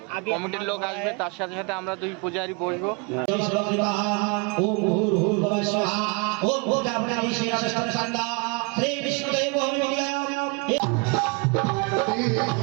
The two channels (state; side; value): quieter; left; 31.6 dB